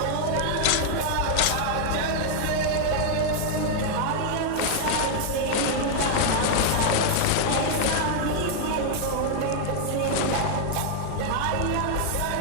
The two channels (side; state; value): both; different; correlation 0.00